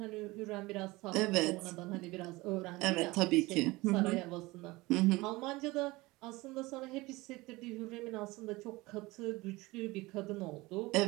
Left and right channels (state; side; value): quieter; left; 21.4 dB